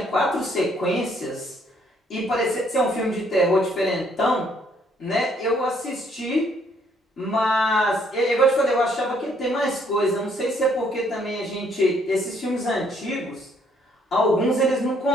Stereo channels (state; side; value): normal; both; correlation 0.66